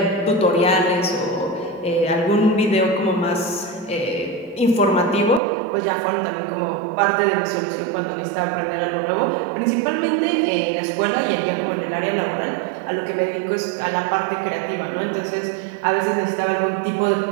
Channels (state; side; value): drops out; left; at 5.4 s